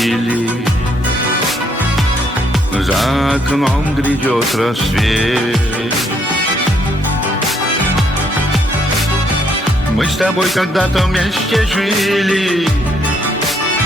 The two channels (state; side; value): normal; both; correlation 0.70